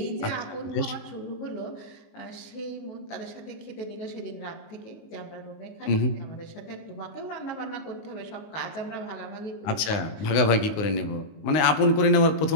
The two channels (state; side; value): late; right; 19 ms